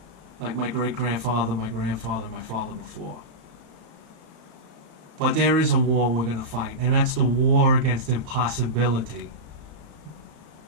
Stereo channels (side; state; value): left; late; 35 ms